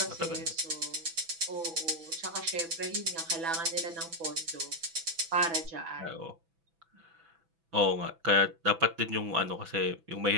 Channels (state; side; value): late; left; 6.0 ms